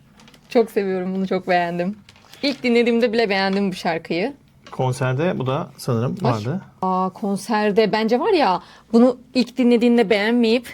Çok seviyorum bunu, çok beğendim. İlk dinlediğimde bile beğendim bu şarkıyı. Konserde bu da sanırım vardı. Konserde bence var ya, bunu ilk dinlediğinde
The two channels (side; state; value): both; identical; correlation 1.00